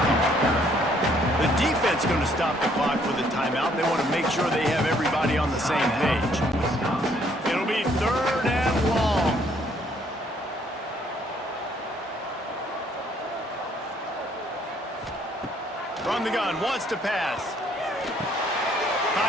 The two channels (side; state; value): both; normal; correlation 0.65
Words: couple. The defense going to stop the clock with a timeout. They want to make sure they have everybody on the same page. It'll be 3rd and long. From the gun, wants to pass.